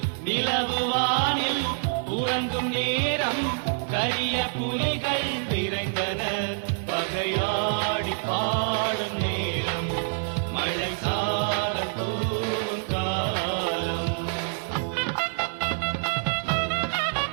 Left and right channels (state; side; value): silent; left; digital silence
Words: நிலவு வானில் உறங்கும் நேரம் கரிய புலிகள் விரைந்தனர். பகையாடி பாடும் நேரம் மழை சாரல் தூவும் காலம்.